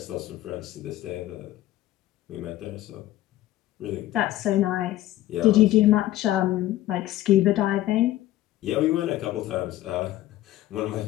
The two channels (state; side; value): quieter; right; 14.8 dB